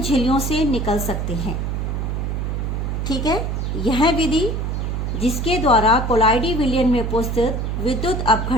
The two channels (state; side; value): noise; right; hum, 1 dB below the sound